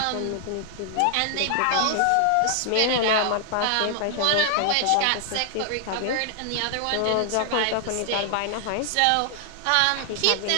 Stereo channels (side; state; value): both; different; correlation 0.00